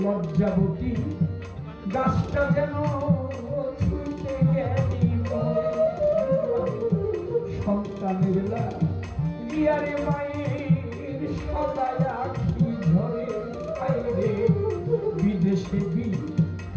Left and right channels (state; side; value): identical; both; correlation 1.00